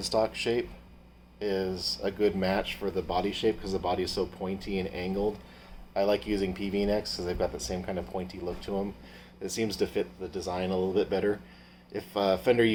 shape is a good match for the body shape because the body is so pointy and angled. I like using PV-necks because they've got the same kind of pointy look to them. It seems to fit the design a little bit better. If Fender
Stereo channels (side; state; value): both; identical; correlation 1.00